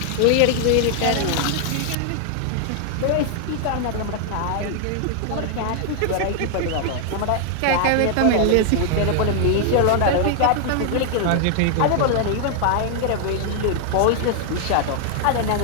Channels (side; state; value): both; different; correlation 0.00